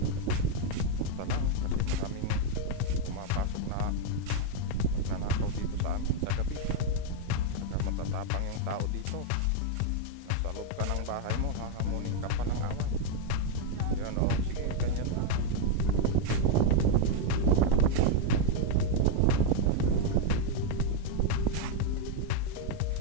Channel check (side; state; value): both; different; correlation 0.00